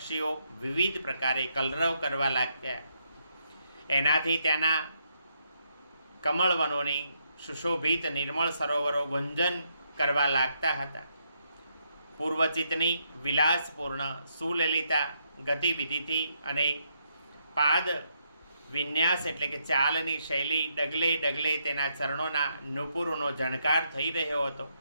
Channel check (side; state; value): both; inverted; correlation -0.77